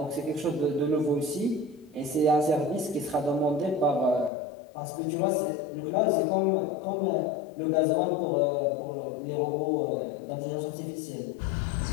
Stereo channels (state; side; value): drops out; right; at 4.3 s